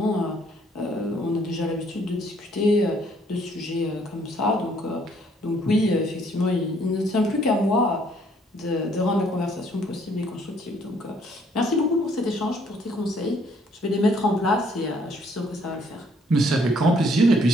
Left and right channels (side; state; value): both; normal; correlation 0.64